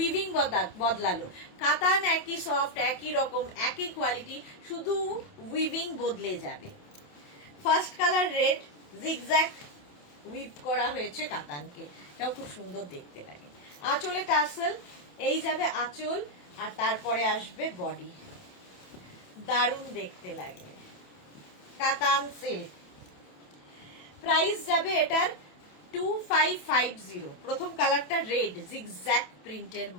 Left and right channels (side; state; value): right; late; 27 ms